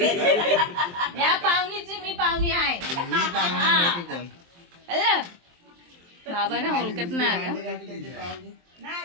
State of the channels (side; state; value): left; late; 23 ms